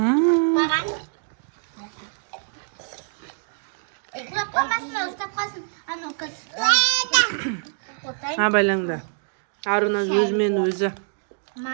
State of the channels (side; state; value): left; silent; digital silence